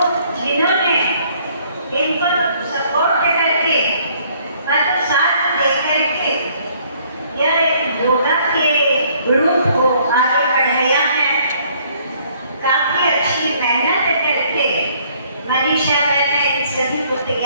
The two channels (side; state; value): both; inverted; correlation -0.62